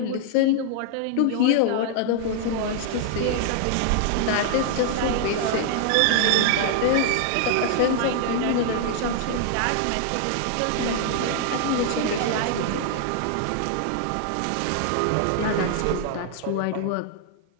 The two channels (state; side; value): different; both; correlation 0.00